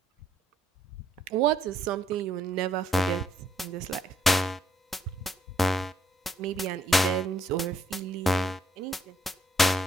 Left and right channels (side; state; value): both; normal; correlation 0.71